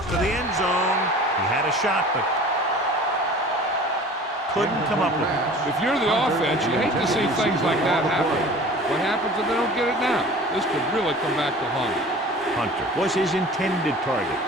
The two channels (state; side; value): normal; both; correlation 0.43